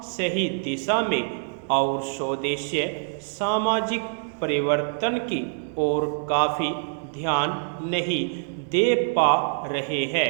सही दिशा में और स्वदेशीय सामाजिक परिवर्तन की ओर काफ़ी ध्यान नहीं दे पा रहे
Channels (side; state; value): left; silent; digital silence